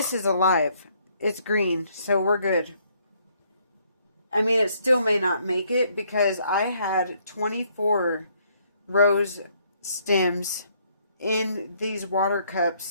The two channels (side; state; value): both; inverted; correlation -0.68